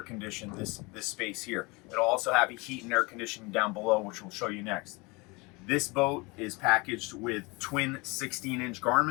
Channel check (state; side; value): quieter; right; 26.5 dB